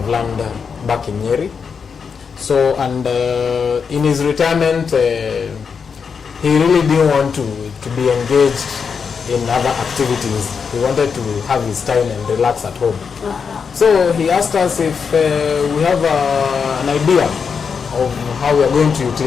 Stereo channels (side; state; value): right; quieter; 6.0 dB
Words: land back in Nyeri. So, and in his retirement, he really didn't want to be engaged in other activities. He wanted to have his time and relax at home. So he asked us if we have an idea of how we are going to